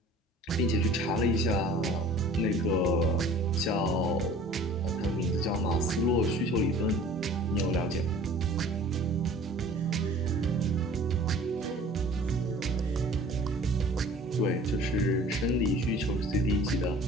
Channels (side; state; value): both; normal; correlation 0.47